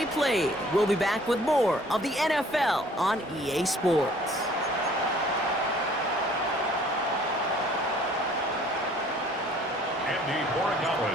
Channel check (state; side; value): normal; both; correlation 0.55